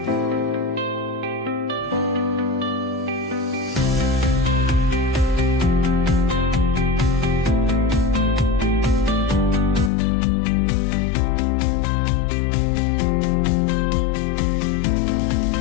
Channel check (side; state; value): right; drops out; at 9.9 s